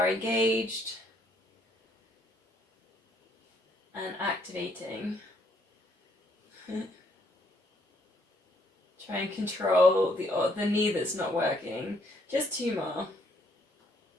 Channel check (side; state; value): both; normal; correlation 0.68